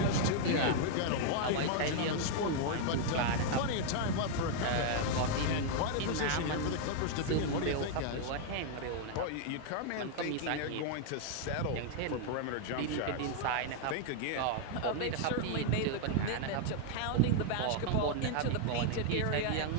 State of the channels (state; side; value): different; both; correlation 0.00